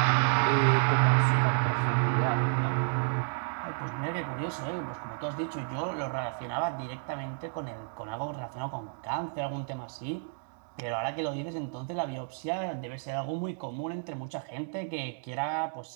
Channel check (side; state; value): left; silent; digital silence